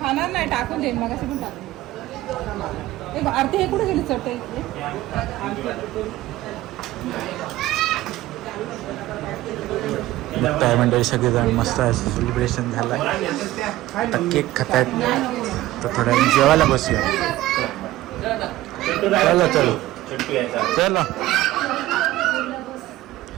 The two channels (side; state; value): left; quieter; 16.3 dB